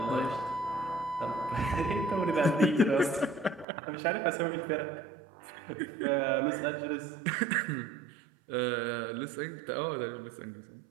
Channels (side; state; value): left; drops out; at 3.7 s